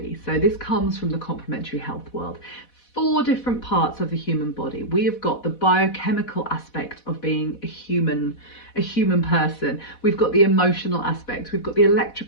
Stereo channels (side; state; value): right; late; 4.1 ms